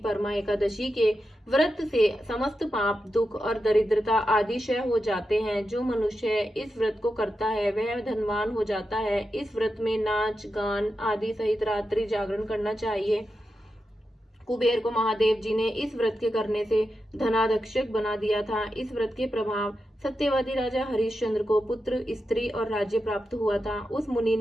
एकादशी के व्रत से समस्त पाप, दुख और दरिद्रता आदि क्षय हो जाते हैं। जो मनुष्य इस व्रत को करता है वह धनवान हो जाता है। इस व्रत में नाच गान आदि सहित रात्रि जागरण करना चाहिए। कुबेर को महादेव जी ने इस व्रत के करने से धनाध्यक्षक बना दिया था। इस व्रत के प्रभाव सत्यवादी राजा हरिश्चंद्र को पुत्र, स्त्री और राज्य प्राप्त हुआ था। उस मुनि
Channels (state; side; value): normal; both; correlation 0.89